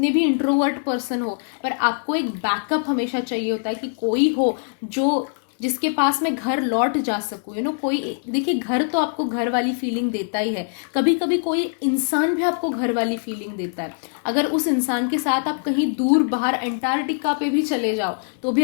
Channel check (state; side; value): silent; right; digital silence